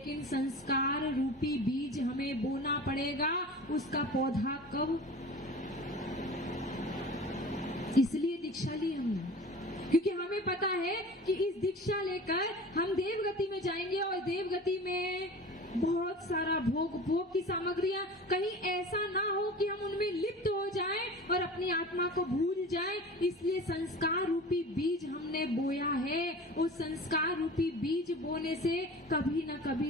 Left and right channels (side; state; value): both; normal; correlation 0.38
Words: संस्कार रूपी बीज हमें बोना पड़ेगा। उसका पौधा कब? इसलिए दीक्षा ली हमने, क्योंकि हमें पता है कि इस दीक्षा लेकर हम देवगति में जाएंगे। और देवगति में बहुत सारा भोग की सामग्रियां, कहीं ऐसा ना हो कि हम उनमें लिप्त हो जाएं और अपनी आत्मा को भूल जाएं। इसलिए संस्कार रूपी बीज हमने बोया है। उस संस्कार रूपी बीज बोने से कभी ना